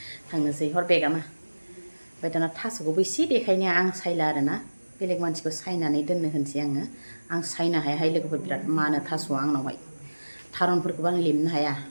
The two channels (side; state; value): both; inverted; correlation -1.00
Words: थांनोसै हर बेगामा ओमफ्राय दाना थास'खौबो एसे देखायनो आं सायला आरोना बेलेग मानसिखौ सायनानै दोननो होनसै आङो आं सायनो हायाहाय लोगोफोर बिराद मानो थास'आ आंनावहाय थारुनफोरखौबो आं लेमनो हाया